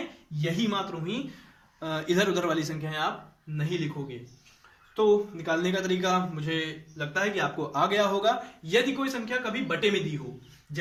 यही मात्र हुई, इधर उधर वाली संख्याएं आप नहीं लिखोगे। तो निकालने का तरीका मुझे लगता है कि आपको आ गया होगा। यदि कोई संख्या कभी बटे में दी हो,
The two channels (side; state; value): both; identical; correlation 1.00